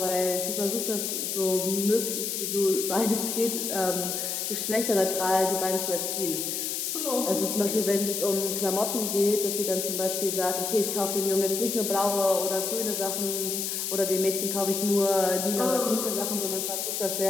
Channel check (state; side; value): noise; left; hiss, 2 dB below the sound